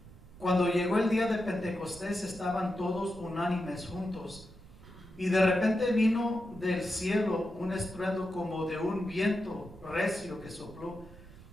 cuando llegó el día de Pentecostés estaban todos unánimes juntos, y de repente vino del cielo un estruendo como de un viento recio que sopló,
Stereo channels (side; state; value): right; noise; rumble, 20 dB below the sound